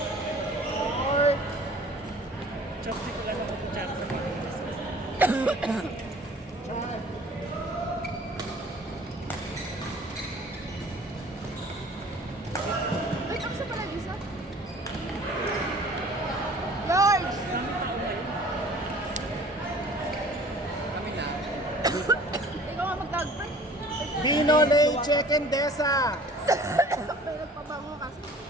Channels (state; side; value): normal; both; correlation 0.49